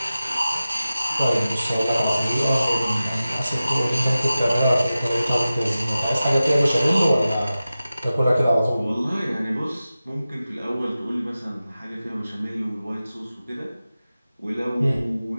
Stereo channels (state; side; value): inverted; both; correlation -0.95